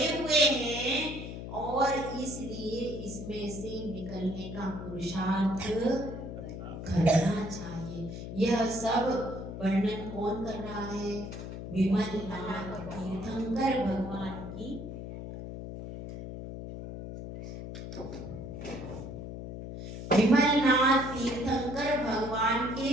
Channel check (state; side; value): noise; left; hum, 8 dB below the sound